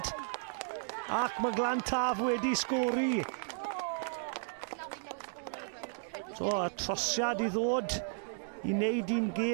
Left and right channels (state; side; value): silent; left; digital silence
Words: ac mae Glantaf wedi sgori. So, y trosiad I ddod I wneud un